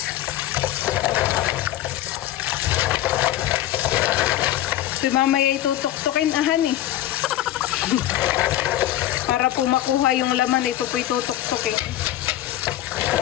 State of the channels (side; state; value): right; quieter; 13.4 dB